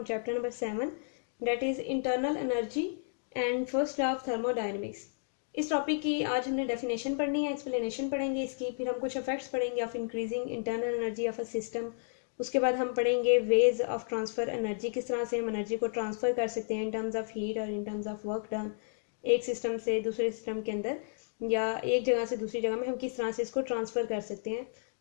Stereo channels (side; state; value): right; silent; digital silence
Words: chapter number 7, that is internal energy and first law of thermodynamics. इस टॉपिक की आज हमने डेफिनेशन पढ़नी है, एक्सप्लेनेशन पढ़ेंगे इसकी, फिर हम कुछ इफेक्ट्स पढ़ेंगे of increasing internal energy of a system. उसके बाद हम पढ़ेंगे वेज ऑफ ट्रांसफ़र एनर्जी, किस तरह से हम एनर्जी को ट्रांसफ़र कर सकते हैं इन टर्म्स ऑफ हीट और in terms of work done, एक सिस्टम से दूसरे सिस्टम के अंदर या एक जगह से दूसरी जगह में हम किस तरह से इसको ट्रांसफ़र कर सकते हैं।